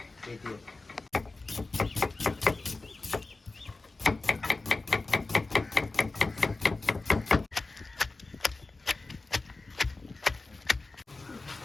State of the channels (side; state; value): right; quieter; 3.4 dB